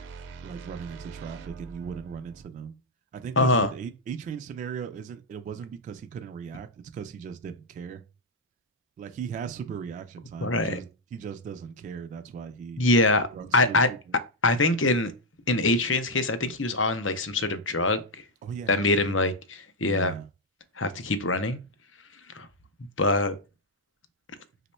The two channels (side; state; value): both; normal; correlation -0.01